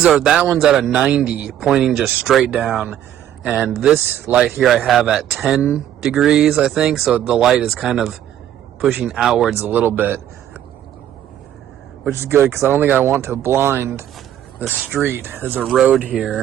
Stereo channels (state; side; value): quieter; left; 11.1 dB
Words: one's at a 90, pointing just straight down. And this light here I have at 10 degrees, I think. So the light is kind of pushing outwards a little bit, which is good because I don't think I want to blind the street. There's a road